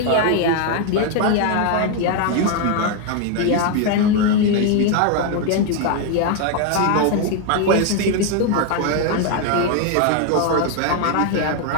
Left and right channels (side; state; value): both; different; correlation 0.01